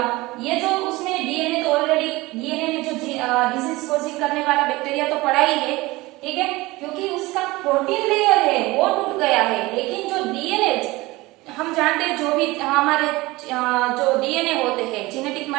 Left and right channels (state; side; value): quieter; left; 20.9 dB